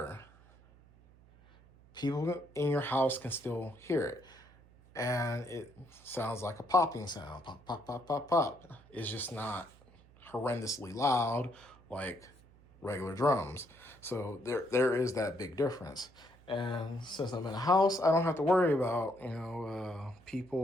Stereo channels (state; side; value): noise; right; hum, 26 dB below the sound